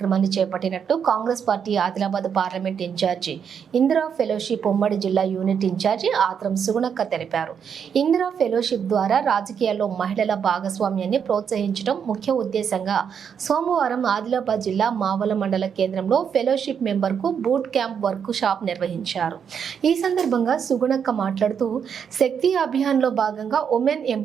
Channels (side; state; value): left; quieter; 7.4 dB